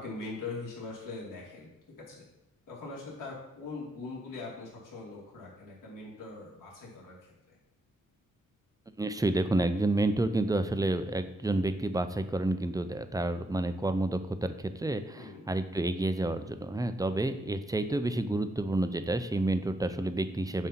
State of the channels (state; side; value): normal; both; correlation 0.80